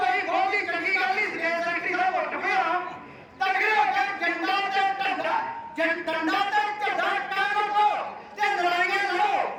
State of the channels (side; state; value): both; identical; correlation 1.00